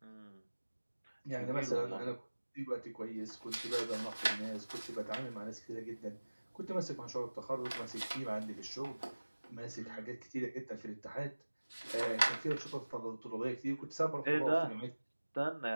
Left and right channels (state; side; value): inverted; both; correlation -1.00